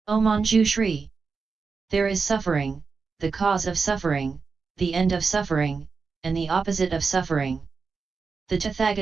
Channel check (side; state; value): left; quieter; 4.9 dB